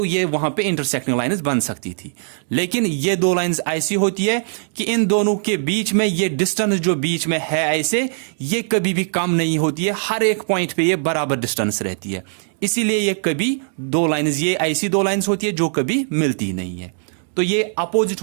ये वहां पे इंटरसेक्टिंग लाइंस बन सकती थी। लेकिन ये दो लाइंस ऐसी होती है कि इन दोनों के बीच में ये डिस्टेंस जो बीच में है ऐसे, ये कभी भी कम नहीं होती है, हर एक पॉइंट पे ये बराबर डिस्टेंस रहती है। इसीलिए ये कभी दो लाइंस, ये ऐसी दो लाइंस होती है जो कभी मिलती नहीं है। तो ये अपोजिट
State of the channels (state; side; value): silent; left; digital silence